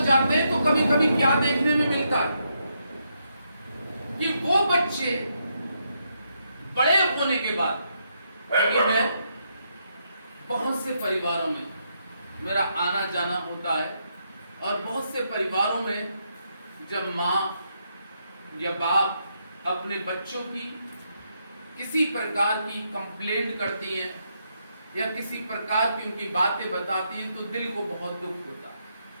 हैं तो कभी कभी क्या देखने में मिलता है कि वो बच्चे बड़े होने के बाद, क्योंकि मैं बहुत से परिवारों में मेरा आना जाना होता है और बहुत से परिवारों में जब माँ या बाप अपने बच्चों की किसी प्रकार की कंप्लेंट करती हैं या किसी प्रकार की उनकी बातें बताती हैं तो दिल को बहुत दुख होता है।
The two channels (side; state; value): both; inverted; correlation -0.79